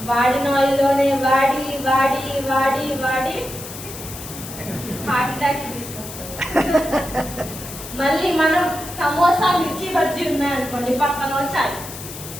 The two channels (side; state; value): left; noise; hiss, 12 dB below the sound